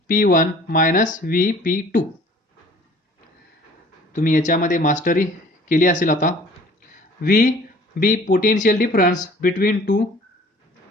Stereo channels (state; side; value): normal; both; correlation 0.50